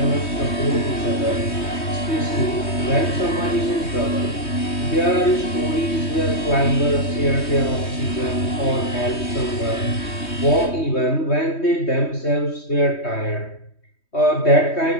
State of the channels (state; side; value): late; right; 3.2 ms